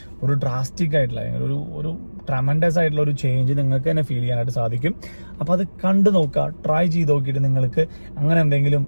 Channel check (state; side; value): inverted; both; correlation -1.00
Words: ഒരു ഡ്രാസ്റ്റിക് ആയിട്ടുള്ള ഒരു ട്രമൻഡസ് ആയിട്ടുള്ള ഒരു ചേഞ്ച് നിങ്ങൾക്ക് തന്നെ ഫീൽ ചെയ്യാനായിട്ട് സാധിക്കും. അപ്പോൾ അത് കണ്ടു നോക്കുക, ട്രൈ ചെയ്ത് നോക്കിയിട്ട് നിങ്ങൾക്ക് അങ്ങനെ എന്തെങ്കിലും